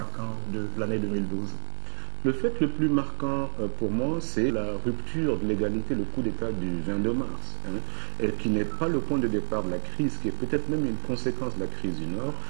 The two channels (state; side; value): silent; left; digital silence